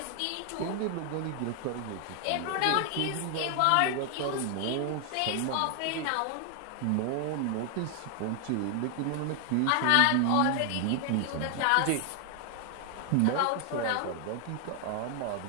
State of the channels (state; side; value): different; both; correlation 0.00